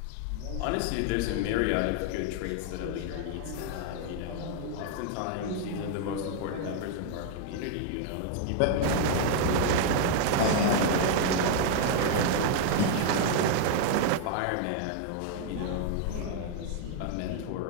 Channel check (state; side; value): different; both; correlation 0.00